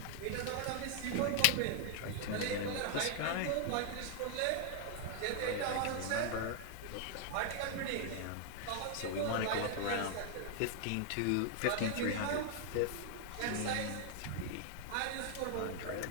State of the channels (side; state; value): both; different; correlation 0.00